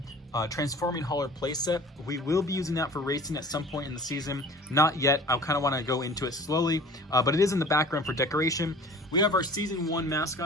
Transforming Hauler playset. We will be using that for racing at some point in the season. Not yet. I kind of want to go into it slowly, but it is in the background for decoration. We have our Season 1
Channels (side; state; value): both; normal; correlation 0.45